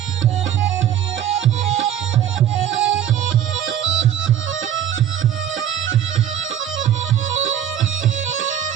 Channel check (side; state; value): left; quieter; 10.2 dB